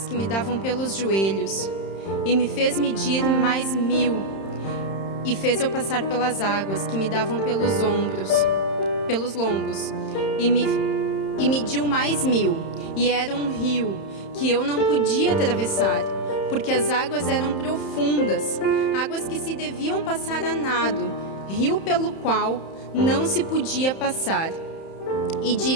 que me davam pelos joelhos, e me fez medir mais 1000, e fez eu passar pelas águas que me davam pelos lombos, e mediu mais 1000, e era um rio que eu não podia atravessar, porque as águas eram profundas, águas que se deviam passar a nado, rio pelo qual não se podia passar. E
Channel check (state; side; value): late; right; 31 ms